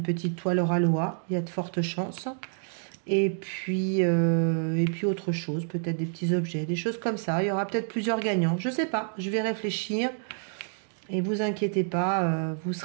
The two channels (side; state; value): left; silent; 59 dB below the other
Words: petite toile Ralois, il y a de fortes chances. Et puis autre chose, peut-être des petits objets, des choses comme ça. Il y aura peut-être plusieurs gagnants, je ne sais pas, je vais réfléchir. Et vous inquiétez pas, vous